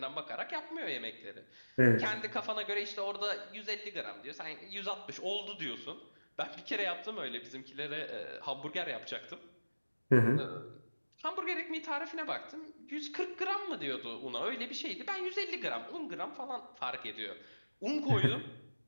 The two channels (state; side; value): inverted; both; correlation -1.00